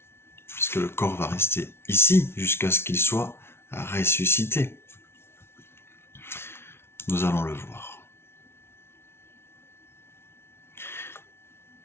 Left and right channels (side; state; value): right; late; 0.12 ms